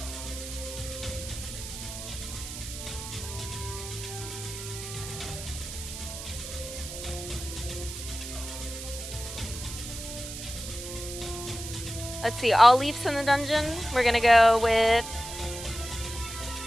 Let's see, all leafs in the dungeon. We're gonna go with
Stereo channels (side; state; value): right; noise; hiss, 9 dB below the sound